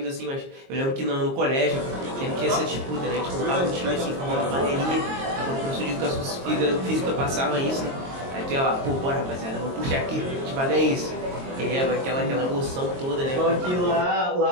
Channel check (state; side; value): late; left; 22 ms